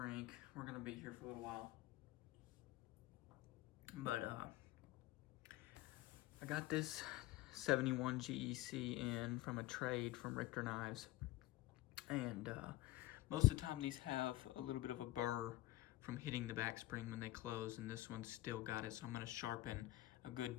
We're gonna be here for a little while, but I got this 71 GEC in from a trade from Richter Knives, and most of the time these have a little bit of a burr from hitting the back spring when they close, and this one's still got it, so I'm going to sharpen a good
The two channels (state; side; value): quieter; right; 17.2 dB